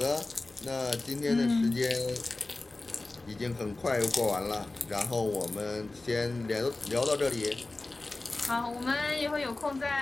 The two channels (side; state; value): right; quieter; 3.1 dB